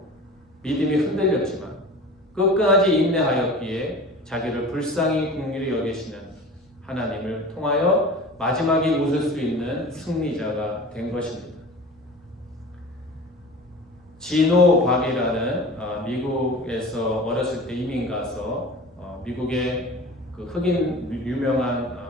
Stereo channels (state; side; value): normal; both; correlation 0.38